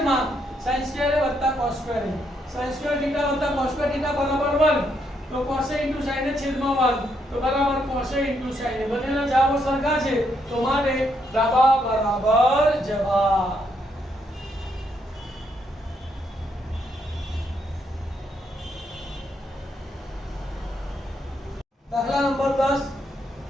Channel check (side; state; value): both; normal; correlation 0.76